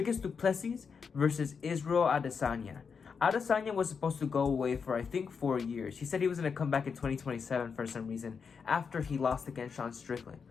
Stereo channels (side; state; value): right; quieter; 5.9 dB